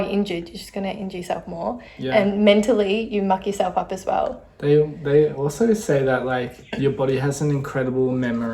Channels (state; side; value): identical; both; correlation 1.00